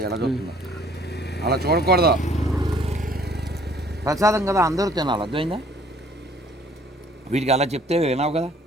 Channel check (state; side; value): normal; both; correlation 0.58